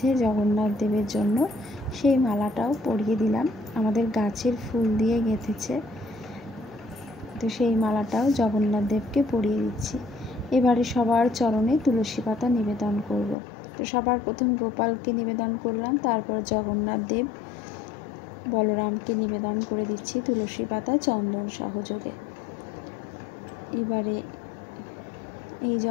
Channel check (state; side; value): drops out; right; at 13.4 s